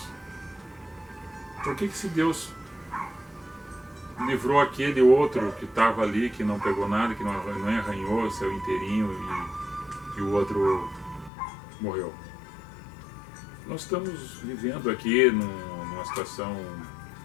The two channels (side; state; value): right; drops out; at 11.3 s